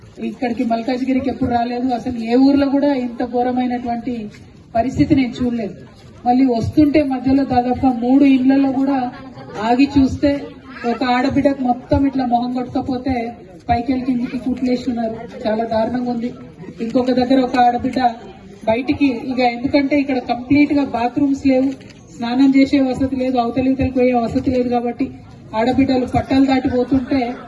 ఇక్కడికి మల్కాజ్గిరికి ఎప్పుడు రాలేదు, అసలు ఏ ఊర్లో కూడా ఇంత ఘోరమైనటువంటి పరిస్థితి నేను చూడలేదు. మళ్ళీ వస్తుంటే మధ్యలో దాదాపుగా 3 ఇళ్లలో కూడా ఆగి చూస్తే ఒక ఆడబిడ్డకు మొత్తం ఇట్లా మొహం కొట్టకపోతే పైకెళ్ళి కిందికి కుట్లేసి ఉన్నారు. చాలా దారుణంగా ఉంది. ఇంకొక దగ్గర ఒక ఆడబిడ్డ బయటికి ఇక ఎందుకంటే ఇక్కడ కంప్లీట్ గా బాత్రూమ్స్ లేవు, స్నానం చేసే వసతి లేదు, అవతలితలకు పోయే వసతి లేదు. కాబట్టి ఆడబిడ్డలు పట్టాలు దాటిపోతుంటే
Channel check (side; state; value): both; identical; correlation 1.00